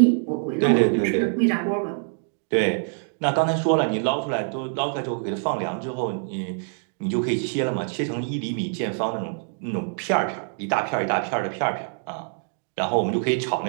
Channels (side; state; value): left; silent; digital silence